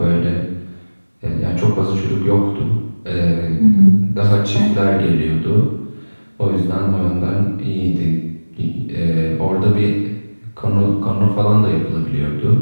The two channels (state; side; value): inverted; both; correlation -1.00